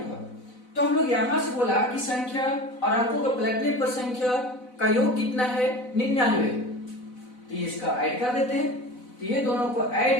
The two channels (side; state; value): right; late; 4.0 ms